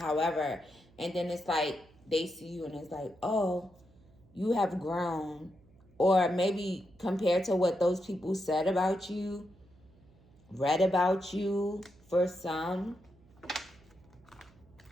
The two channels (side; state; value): right; noise; hum, 28 dB below the sound